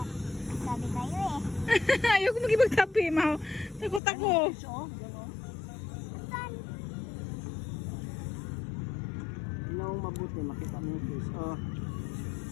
Sabi kayo eh. Ayoko magibagtabi, ma. Takot ako. The sun. Ano mabuti, makita mo yung fish. Oh.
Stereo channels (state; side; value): drops out; right; at 4.0 s